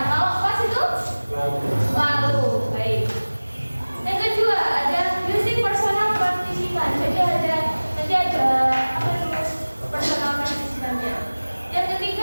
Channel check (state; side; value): inverted; both; correlation -1.00